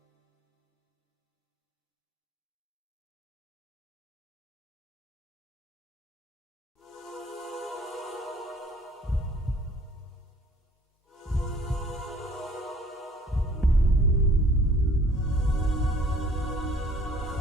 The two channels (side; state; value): both; normal; correlation 0.54